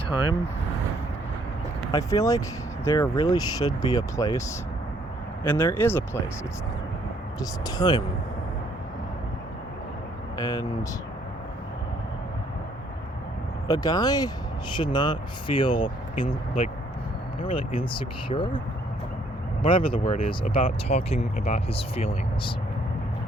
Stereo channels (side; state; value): both; normal; correlation 0.65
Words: I feel like there really should be a place, and there is a place. It's just time. And a guy should not feel not really insecure, whatever the word is, about talking about his feelings.